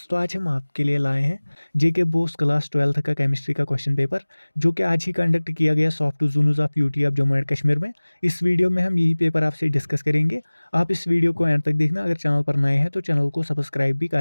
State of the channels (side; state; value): both; inverted; correlation -1.00